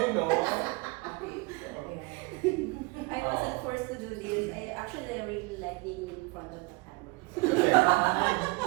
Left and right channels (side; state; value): left; quieter; 25.5 dB